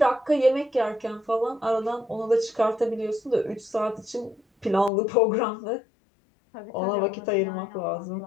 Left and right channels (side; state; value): right; drops out; at 4.9 s